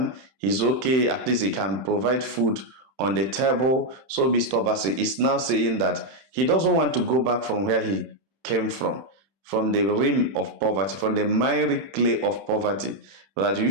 He's okay. At least he can provide food on the table. So Mr. Obasi is now saying that he doesn't want to go back from where he came from the rim of poverty, from the miry clay of poverty. That you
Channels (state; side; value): late; left; 31 ms